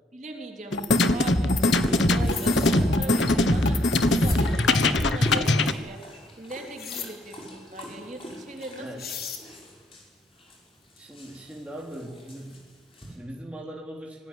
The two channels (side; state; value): both; normal; correlation 0.68